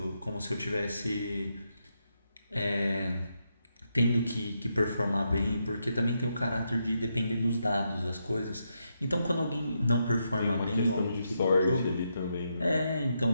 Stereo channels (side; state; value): both; inverted; correlation -0.82